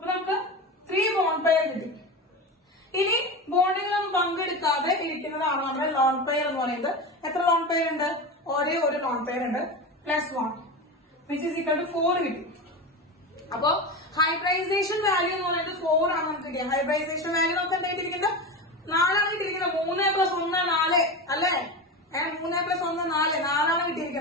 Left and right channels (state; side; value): normal; both; correlation 0.23